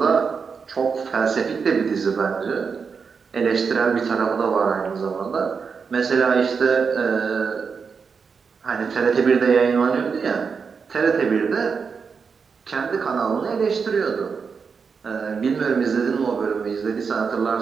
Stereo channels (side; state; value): left; quieter; 5.6 dB